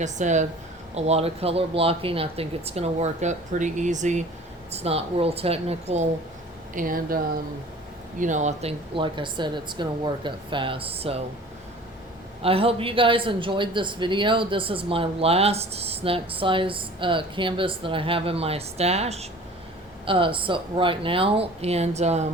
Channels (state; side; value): normal; both; correlation 0.45